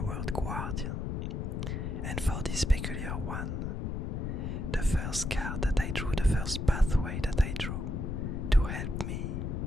word guardian, and for this peculiar one, the first card that I drew, the first pathway that I drew to help me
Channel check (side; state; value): left; noise; rumble, 2 dB below the sound